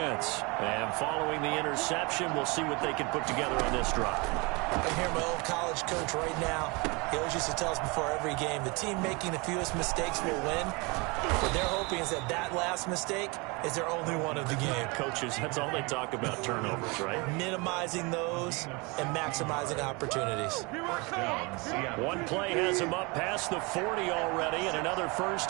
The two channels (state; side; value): quieter; left; 27.8 dB